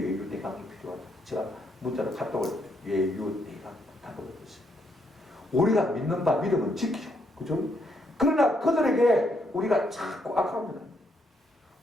필요하다. 제가 문자로 카톡을 외유내강 답을 얻었습니다. 우리가 믿는 바 믿음은 지키죠. 그죠? 그러나 그들에게 우리가 자꾸 악하면 합니다.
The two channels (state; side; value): normal; both; correlation 0.75